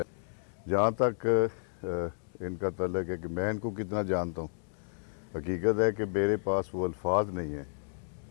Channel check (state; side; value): silent; right; digital silence